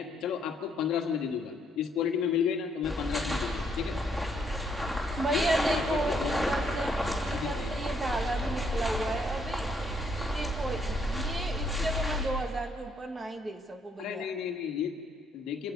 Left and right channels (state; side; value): normal; both; correlation 0.71